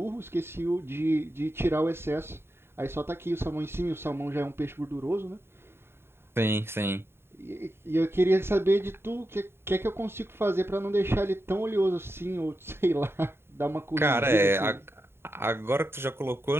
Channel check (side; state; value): left; late; 0.11 ms